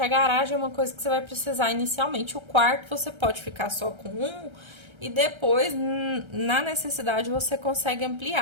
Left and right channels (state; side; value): late; left; 1.3 ms